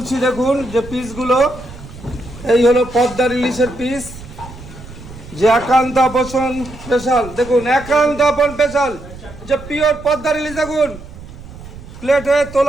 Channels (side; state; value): right; noise; rumble, 15 dB below the sound